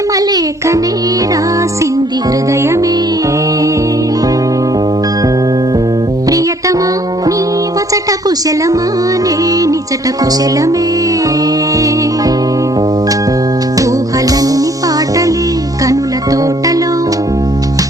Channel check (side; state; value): both; normal; correlation 0.62